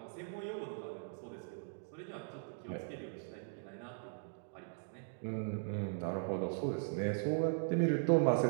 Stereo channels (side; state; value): left; silent; digital silence